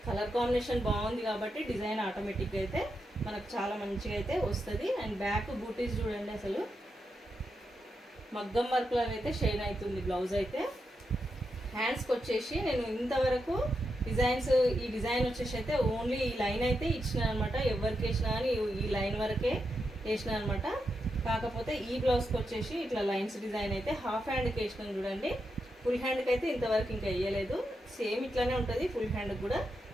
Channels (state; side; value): normal; both; correlation 0.85